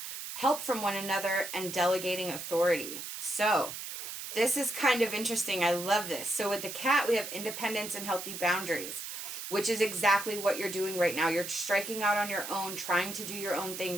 from one another and delegating authority. So this is kind of interesting. I love this. So with the cat, we have independence and healthy boundaries, which is exactly what you're doing right now. You're striking out on your own, trying to do your own thing,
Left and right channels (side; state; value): right; noise; hiss, 8 dB below the sound